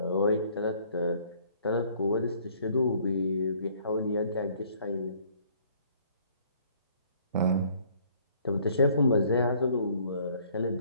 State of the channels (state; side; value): inverted; both; correlation -0.59